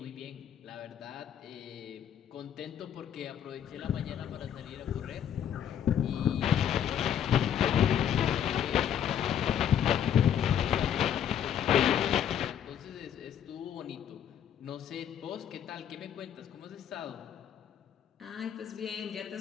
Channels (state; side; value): quieter; right; 9.5 dB